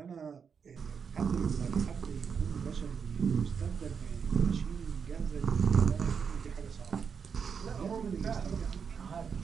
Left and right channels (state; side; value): quieter; left; 6.4 dB